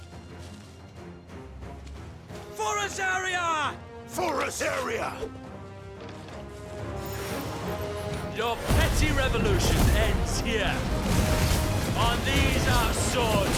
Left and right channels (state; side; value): identical; both; correlation 1.00